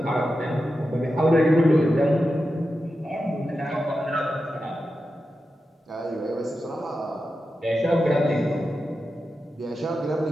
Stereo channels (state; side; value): normal; both; correlation 0.90